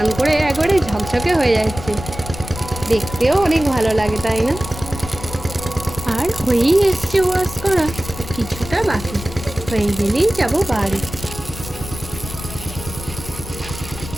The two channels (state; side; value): noise; left; rumble, 11 dB below the sound